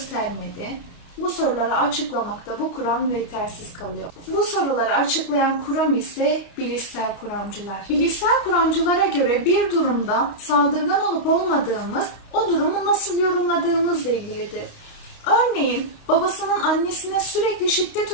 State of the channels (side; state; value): right; late; 29 ms